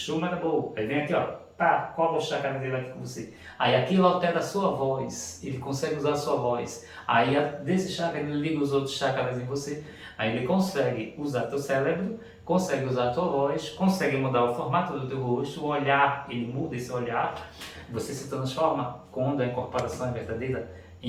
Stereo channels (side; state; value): both; identical; correlation 1.00